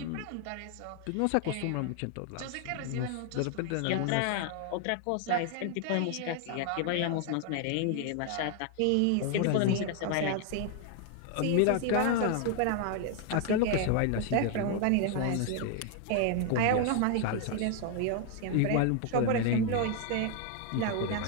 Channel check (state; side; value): different; both; correlation 0.00